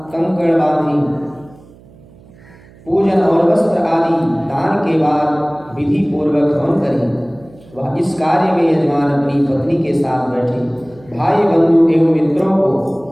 कंकड़ बांधें। पूजन और वस्त्र आदि दान के बाद विधि पूर्वक हवन करें। वह इस कार्य में यजमान अपनी पत्नी के साथ बैठे। भाई बंधु एवं मित्रों को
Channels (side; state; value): right; noise; hum, 25 dB below the sound